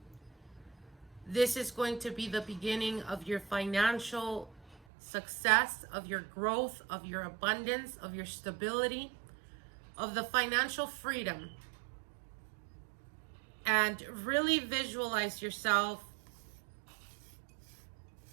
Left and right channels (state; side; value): drops out; left; at 4.8 s